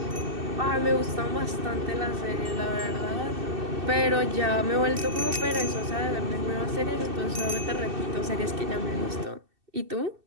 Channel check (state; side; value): late; left; 2.6 ms